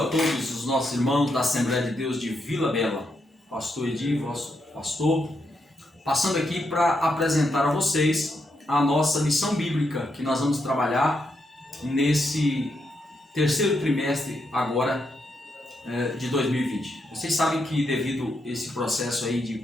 a todos os nossos irmãos da Assembleia de Deus de Vila Bela. Pastor Edi, vosso pastor, passando aqui para apresentar a vocês a nossa lição bíblica que nós vamos trabalhar nesse terceiro trimestre agora de 2020. Vocês sabem que devido a esse processo aí de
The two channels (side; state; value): both; normal; correlation 0.81